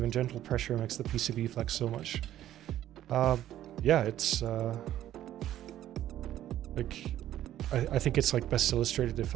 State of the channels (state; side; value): quieter; left; 12.5 dB